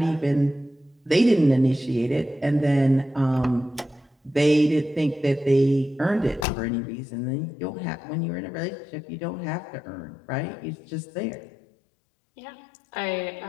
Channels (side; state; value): right; drops out; at 6.5 s